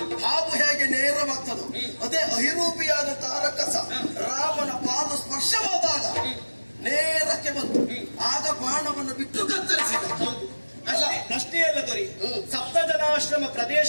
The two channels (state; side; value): inverted; both; correlation -1.00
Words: ಹಾವು ಹೇಗೆ ನೇರವಾಗ್ತದೋ ಅದೇ ಅಹಿರೂಪಿಯಾದಂತಹ ರಕ್ಕಸ ರಾಮನ ಪಾದ ಸ್ಪರ್ಶವಾದಾಗ ನೇರಕ್ಕೆ ಬಂತು. ಆಗ ಬಾಣವನ್ನು ಬಿಟ್ಟು ಕತ್ತರಿಸಿದ. ಅಲ್ಲ, ಪ್ರಶ್ನೆ ಅಲ್ಲ ದೊರೆ. ಸಪ್ತ ಜನಾಶ್ರಮ